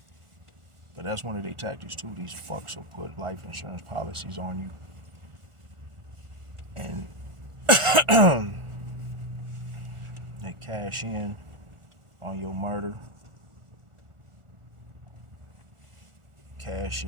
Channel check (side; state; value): left; late; 1.4 ms